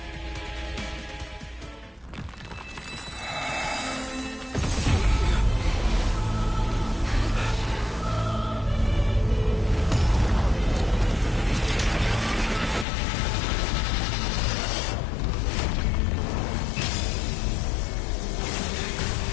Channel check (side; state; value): right; drops out; at 12.9 s